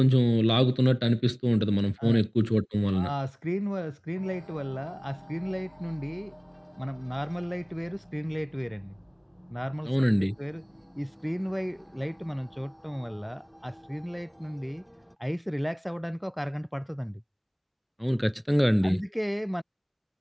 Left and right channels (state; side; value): identical; both; correlation 1.00